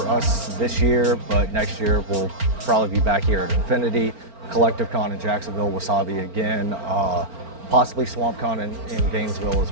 us this year, but next year we'll probably be back here at Infinity, Collective Con in Jacksonville, Wasabi again, possibly Swamp Con in Gainesville as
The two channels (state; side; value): late; left; 4.4 ms